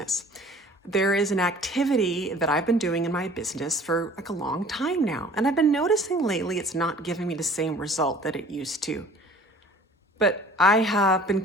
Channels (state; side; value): normal; both; correlation 0.49